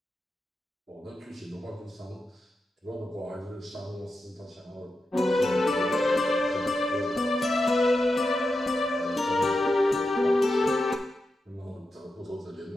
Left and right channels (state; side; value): normal; both; correlation 0.89